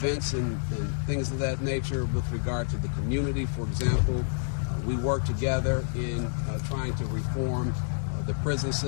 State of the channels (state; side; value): silent; right; digital silence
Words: and things of that nature with regard to the community. For example, we work together in trying to reform the prison